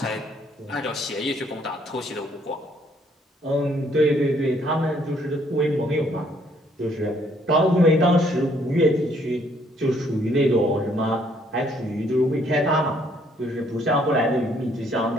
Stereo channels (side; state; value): both; normal; correlation 0.65